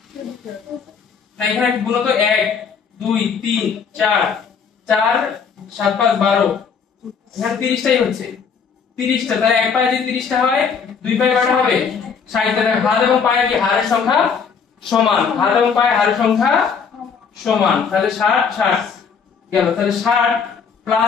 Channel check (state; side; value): quieter; right; 6.2 dB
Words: না, এখানে গুণ তো 1 2 3 4 4 7 5 12, এখানে 30টাই হচ্ছে। 30টা। তাহলে এক পায়ে যদি 30টা হয়, দুই পায়ে কয়টা হবে? 60টা। হাত এবং পায়ের কি হাড়ের সংখ্যা সমান? হাত এবং পায়ের হাড়ের সংখ্যা সমান। তাহলে 60 60 গেল। তাহলে 60